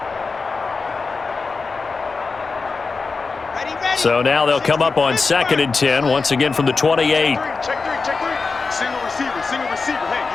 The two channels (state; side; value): quieter; right; 4.4 dB